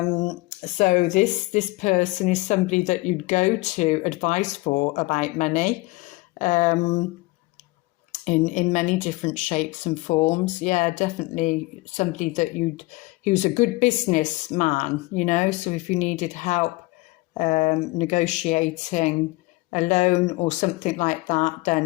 this person is somebody that you'd go to advice for about money, in many different shapes and forms. Yeah, definitely somebody that he was a good businessman, you know. So if you needed help negotiating a loan or something like that,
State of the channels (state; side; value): quieter; right; 22.1 dB